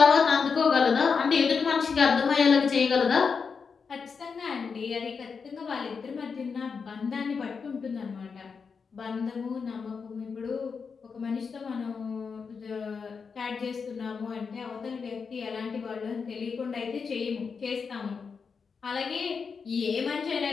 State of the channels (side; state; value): right; quieter; 5.5 dB